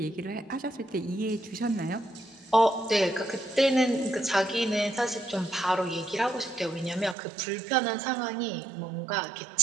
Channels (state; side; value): drops out; left; at 7.2 s